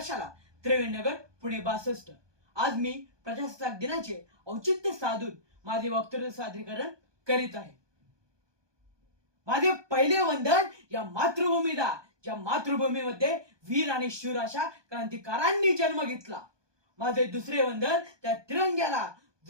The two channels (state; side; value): late; left; 1.2 ms